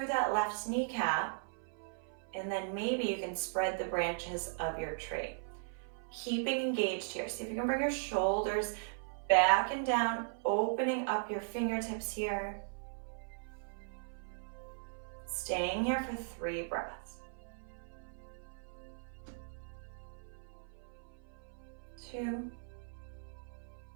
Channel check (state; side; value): silent; left; 52 dB below the other